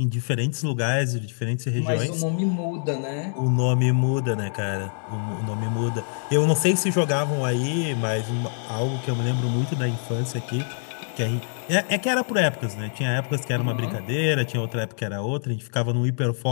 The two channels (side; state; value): right; silent; digital silence